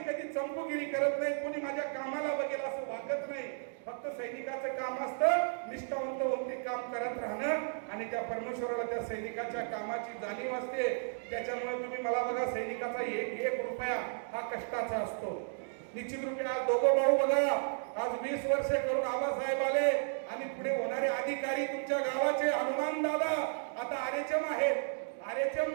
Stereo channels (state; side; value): silent; left; digital silence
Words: कधी चंपूगिरी करत नाही. कोणी माझ्या कामाला बघेल असं वागत नाही. फक्त सैनिकाचं काम असतं निष्ठावंत होऊन ते काम करत राहणं आणि त्या परमेश्वराला त्या सैनिकाच्या कामाची जाणीव असते. त्याच्यामुळे तुम्ही मला बघा, सैनिकाचा एक रुपया हा कष्टाचा असतो. निश्चित रूपे आज दोघं भाऊ बघा, आज 20 वर्षे करून आबासाहेब आले आणि पुढे होणारे अधिकारी तुमच्या गावाचे हनुमान दादा आता आरेचम आहेत. आरेचम